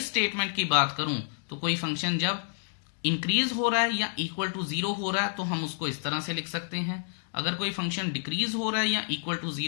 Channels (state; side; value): silent; right; digital silence